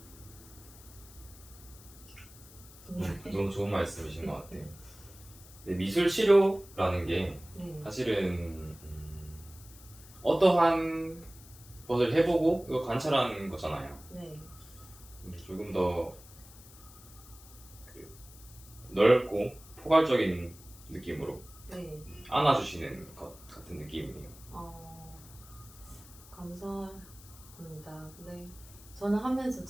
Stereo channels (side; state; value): left; noise; hiss, 20 dB below the sound